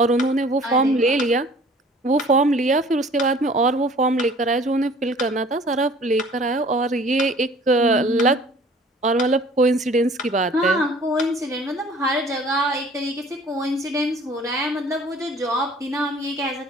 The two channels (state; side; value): normal; both; correlation 0.51